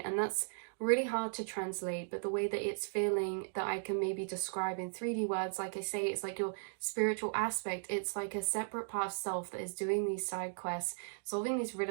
and that's really hard to translate. But the way that it's feeling, that I can maybe describe in 3D words, like I say, it's like your spiritual aspect. It's like a separate part of self that is doing these side quests, solving these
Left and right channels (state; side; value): silent; left; digital silence